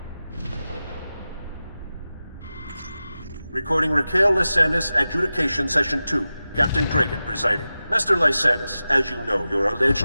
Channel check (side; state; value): both; inverted; correlation -0.94